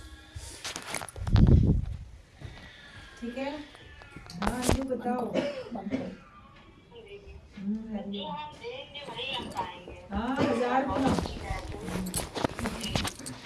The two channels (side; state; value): both; identical; correlation 1.00